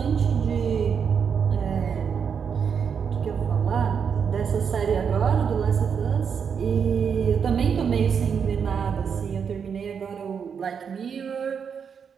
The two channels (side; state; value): left; quieter; 6.8 dB